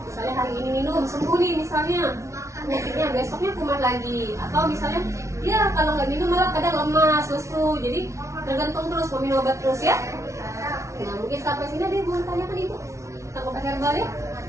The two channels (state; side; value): late; left; 0.14 ms